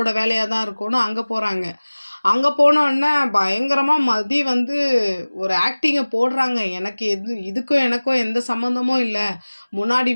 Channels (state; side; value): inverted; both; correlation -1.00